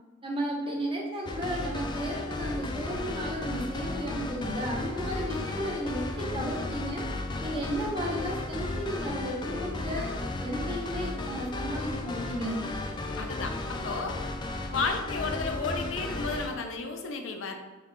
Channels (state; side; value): normal; both; correlation 0.49